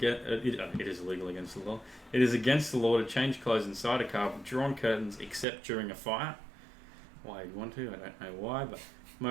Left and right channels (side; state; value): left; drops out; at 5.5 s